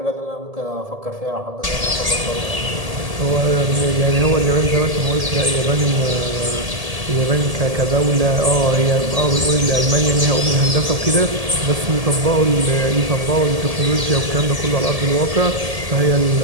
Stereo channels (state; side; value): late; left; 1.7 ms